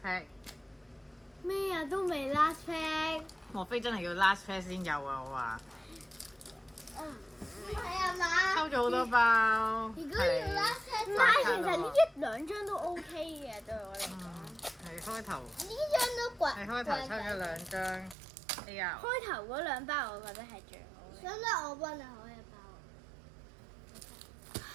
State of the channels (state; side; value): drops out; left; at 18.2 s